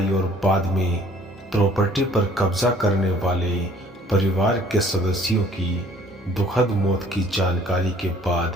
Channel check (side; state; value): both; normal; correlation 0.56